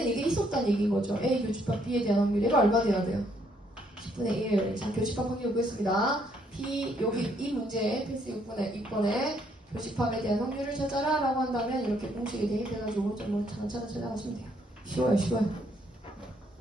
이게 있었다는 얘기인 거죠. A 교집합 B에 대한 확률. 얘가 얼마 돼야 돼요? 10분의 1. 자, 교집합 확률 보겠습니다. B, 여기 이 문제에 필수 6번에 교집합에 대한 확률을 찾아라 라고 한다면 이렇게 공식이 대입해가지고 오른쪽으로 차근차근 찾아가시면 돼요. 쉬워요.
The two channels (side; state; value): both; normal; correlation 0.70